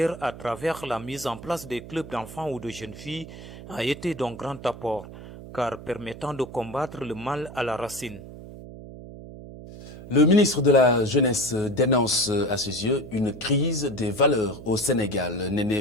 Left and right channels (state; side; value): noise; right; hum, 14 dB below the sound